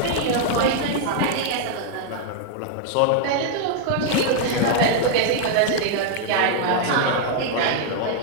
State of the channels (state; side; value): different; both; correlation 0.00